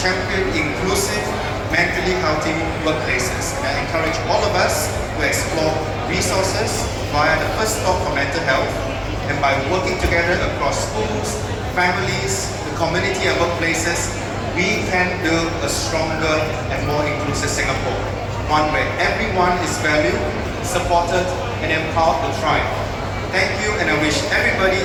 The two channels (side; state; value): both; identical; correlation 1.00